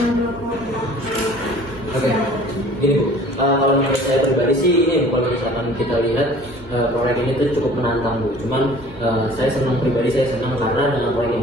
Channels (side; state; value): left; late; 2.1 ms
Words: menurut Oke, gini Bu, kalau menurut saya pribadi sih ini kalau misalkan kita lihat proyek ini tuh cukup menantang Bu. Cuman saya senang pribadi, saya senang karena dengan proyek yang